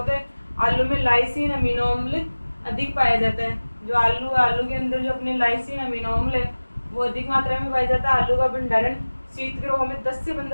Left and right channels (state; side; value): inverted; both; correlation -1.00